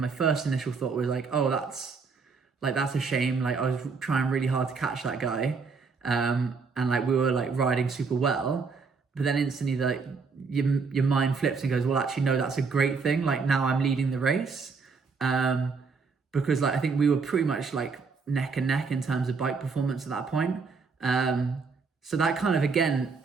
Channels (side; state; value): left; quieter; 4.9 dB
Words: first initial thought was like, oh, that's a shame. Like I was trying really hard to catch that guy. And like we were like riding super well, but then instantly like your mind flips and goes, well, actually, no, that's a great thing. Like now I'm leading the race. Because like, I think we were pretty much like neck and neck in terms of bike performance at that point. So that kind of, again,